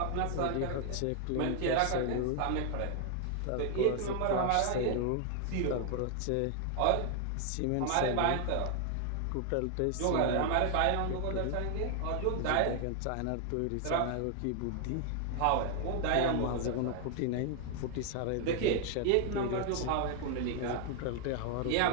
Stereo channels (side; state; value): both; different; correlation 0.00